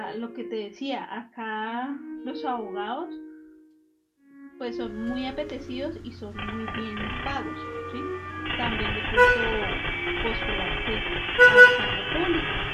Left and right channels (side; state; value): both; identical; correlation 1.00